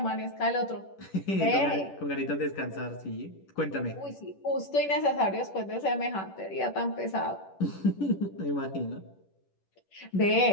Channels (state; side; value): late; right; 10 ms